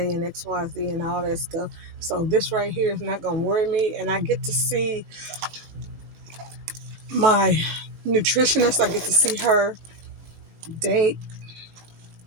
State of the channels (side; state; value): left; late; 18 ms